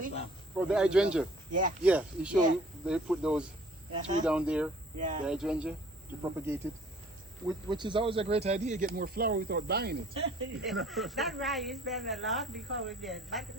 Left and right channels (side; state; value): both; normal; correlation 0.54